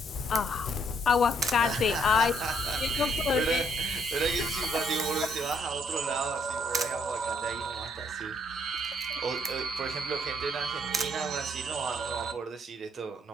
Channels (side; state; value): both; normal; correlation 0.69